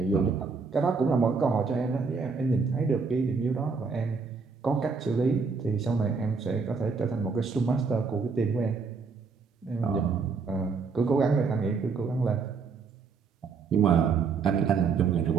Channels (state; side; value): quieter; left; 4.9 dB